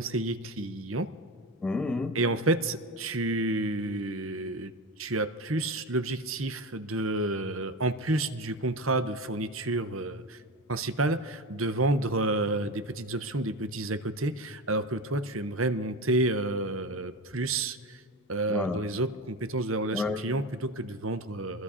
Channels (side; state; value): both; normal; correlation 0.24